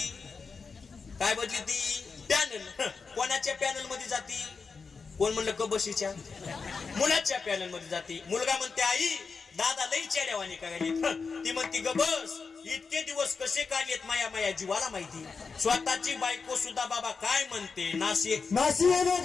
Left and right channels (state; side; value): quieter; right; 4.9 dB